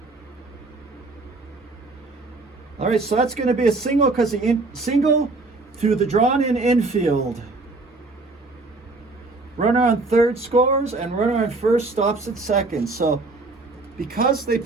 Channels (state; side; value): quieter; left; 3.4 dB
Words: All right, so that's going to be a single because the single through the drawn-in infield. Runner on third scores, and runner on first stops at second. So because they